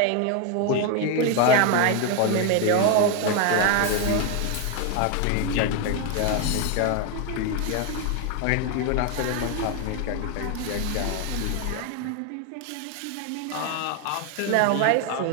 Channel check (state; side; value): different; both; correlation 0.01